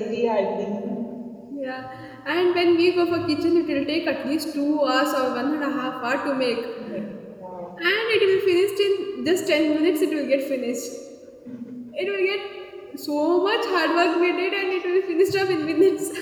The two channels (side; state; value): both; identical; correlation 1.00